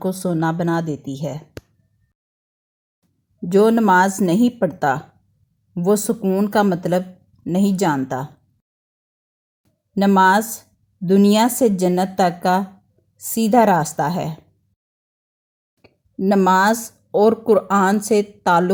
سونا بنا دیتی ہے۔ جو نماز نہیں پڑھتا وہ سکون کا مطلب نہیں جانتا۔ نماز دنیا سے جنت تک کا سیدھا راستہ ہے۔ نماز اور قرآن سے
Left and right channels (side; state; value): both; identical; correlation 1.00